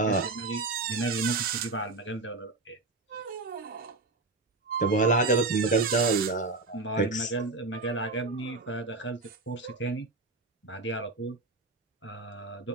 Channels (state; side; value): quieter; left; 3.4 dB